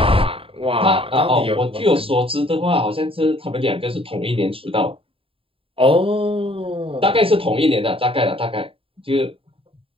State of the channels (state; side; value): late; left; 0.27 ms